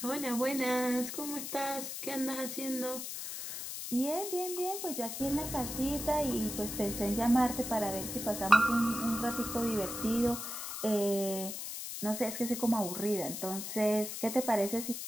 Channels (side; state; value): left; noise; hiss, 6 dB below the sound